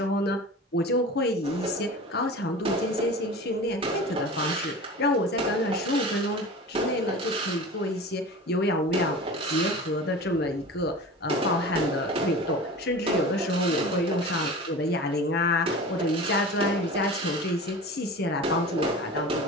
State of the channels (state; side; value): normal; both; correlation 0.35